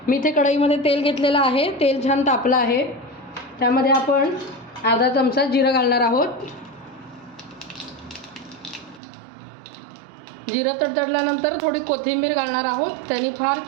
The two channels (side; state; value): left; drops out; at 9.0 s